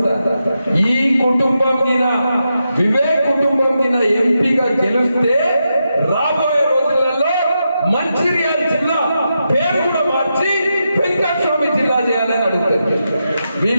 ఈ కుటుంబం మీద, వివేక్ కుటుంబం మీద ఎంపీగా గెలిస్తే రాబోయే రోజులలో మంచిర్యాల జిల్లా పేరు కూడా మార్చి వెంకటస్వామి జిల్లా చేయాలని అడుగుతారు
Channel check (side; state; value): both; inverted; correlation -0.86